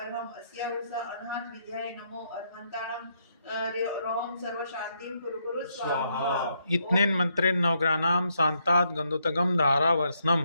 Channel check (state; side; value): inverted; both; correlation -0.76